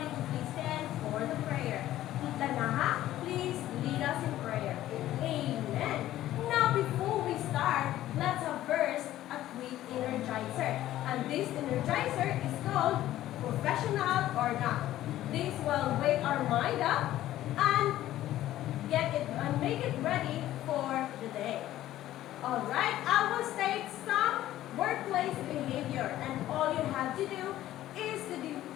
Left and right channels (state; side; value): quieter; right; 13.9 dB